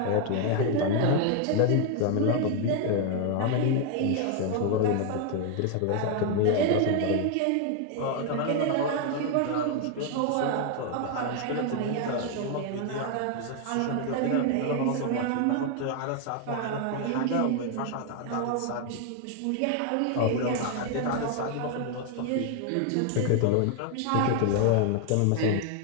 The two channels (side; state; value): both; different; correlation 0.00